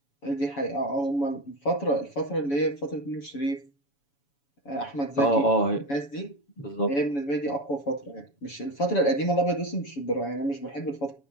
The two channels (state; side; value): late; right; 7.1 ms